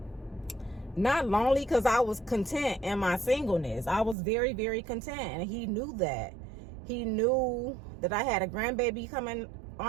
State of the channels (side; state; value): left; drops out; at 4.2 s